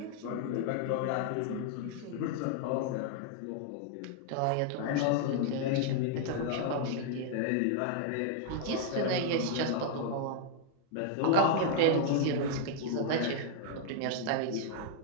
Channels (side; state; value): both; different; correlation 0.00